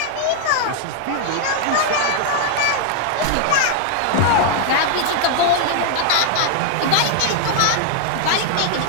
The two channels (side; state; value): both; different; correlation 0.00